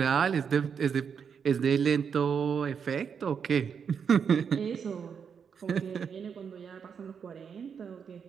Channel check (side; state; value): left; quieter; 6.8 dB